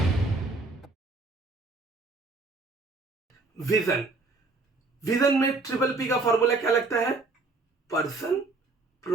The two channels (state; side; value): quieter; left; 3.5 dB